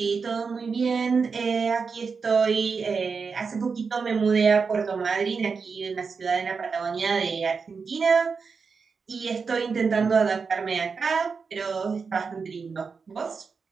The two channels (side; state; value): left; quieter; 5.2 dB